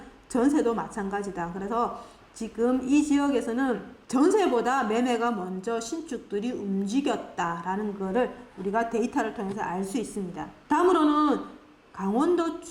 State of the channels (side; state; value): both; identical; correlation 1.00